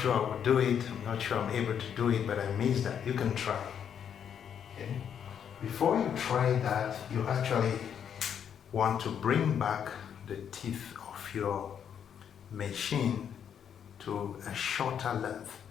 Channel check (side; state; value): right; quieter; 8.4 dB